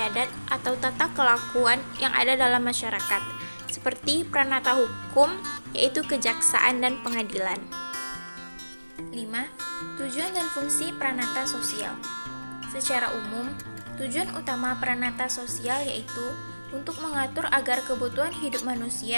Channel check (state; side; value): inverted; both; correlation -1.00